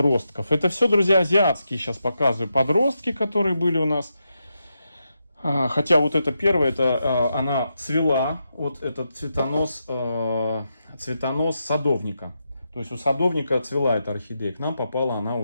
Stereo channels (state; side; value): inverted; both; correlation -0.85